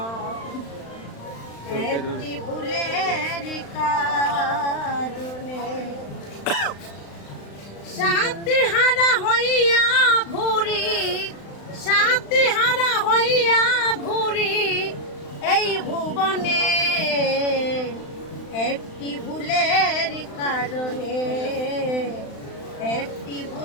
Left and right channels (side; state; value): right; late; 35 ms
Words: একটি ভুলের কারণে সাথী হারা হইয়া ঘুরি, সাথী হারা হইয়া ঘুরি এই ভুবনে, একটি ভুলের কারণে, একটি